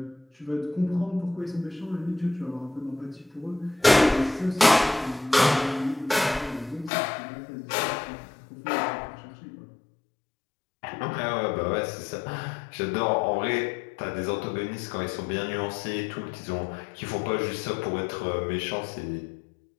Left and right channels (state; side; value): drops out; right; at 6.9 s